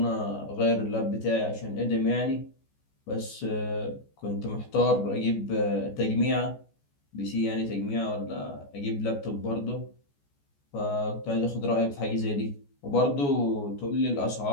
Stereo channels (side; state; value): right; late; 14 ms